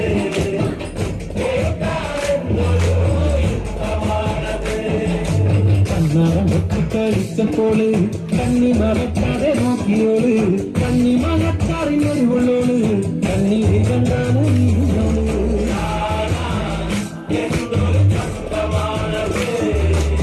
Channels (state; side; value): identical; both; correlation 1.00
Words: കളിച്ചപ്പോള് കണ്ണി മറക്കാതെ നോക്കിയോള് കണ്ണി മറക്കാറിനൊരുള്ളോള് കണ്ണീര് കണ്ടാണ് നീയോള്